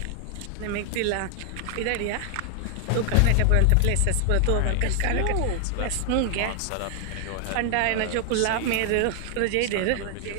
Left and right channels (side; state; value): both; different; correlation 0.00